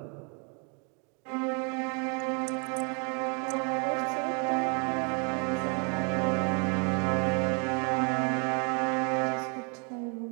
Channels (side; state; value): left; quieter; 35.4 dB